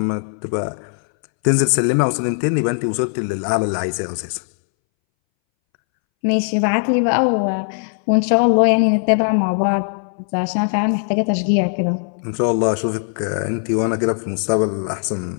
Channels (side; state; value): right; silent; 64 dB below the other